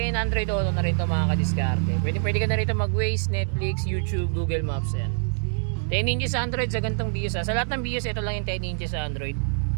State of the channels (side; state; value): left; silent; 62 dB below the other